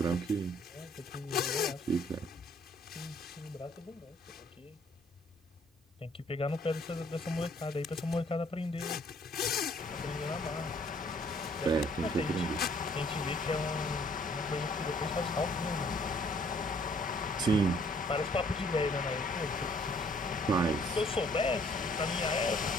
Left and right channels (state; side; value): normal; both; correlation 0.61